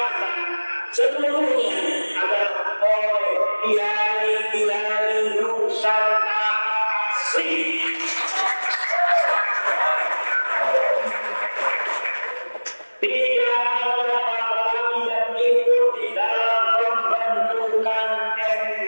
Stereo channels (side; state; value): both; inverted; correlation -1.00